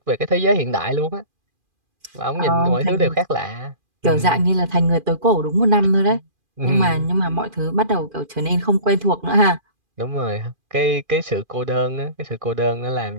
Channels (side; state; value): left; late; 2.4 ms